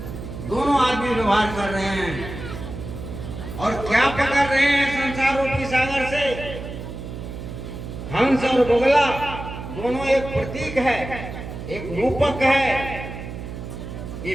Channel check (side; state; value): right; noise; hum, 9 dB below the sound